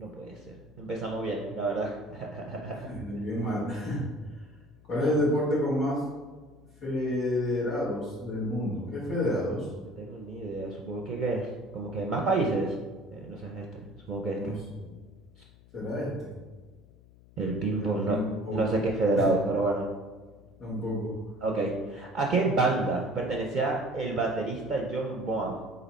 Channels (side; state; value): left; noise; hum, 24 dB below the sound